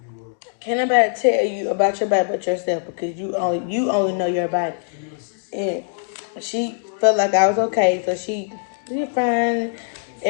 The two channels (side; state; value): right; silent; digital silence